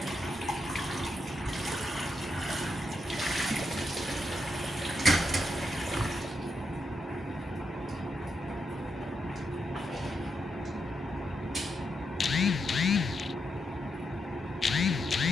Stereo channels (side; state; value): both; normal; correlation 0.83